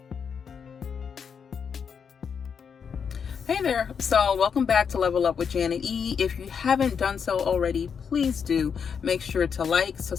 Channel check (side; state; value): right; quieter; 6.7 dB